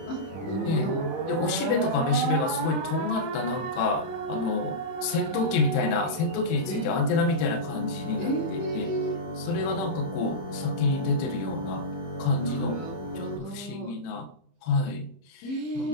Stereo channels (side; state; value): right; late; 31 ms